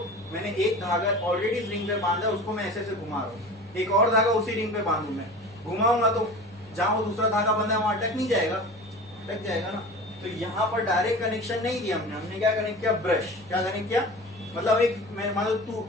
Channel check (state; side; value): normal; both; correlation 0.35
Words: मैंने एक धागा ऑलरेडी इस रिंग पे बांधा, उसको मैं ऐसे ऐसे घुमा रहा हूँ, एक और धागा उसी रिंग पे बांधू, मैं घुमाऊंगा तो जहां वो दूसरा धागा बंधा है वहां अटक नहीं जाएगा, अटक जाएगा ना। तो यहाँ पर डायरेक्ट कनेक्शन नहीं दिया हमने क्या कनेक्ट किया, ब्रश। क्या कनेक्ट किया, मतलब एक मैं मान लो